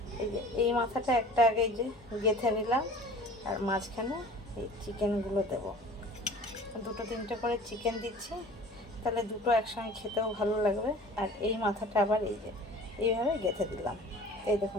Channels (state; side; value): normal; both; correlation 0.44